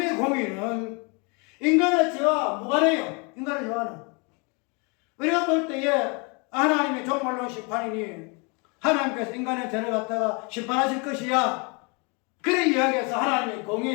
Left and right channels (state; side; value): quieter; right; 31.7 dB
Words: 공의는 인간의 죄와 무관해요. 인간의 죄와는. 우리가 볼 때에 하나님의 종말론 심판이니 하나님께서 인간의 죄를 갖다가 심판하실 것이야. 그래 이야기해서 하나님의